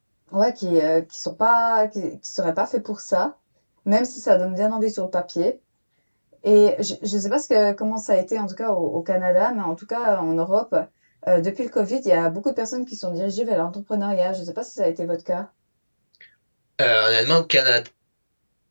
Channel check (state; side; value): inverted; both; correlation -1.00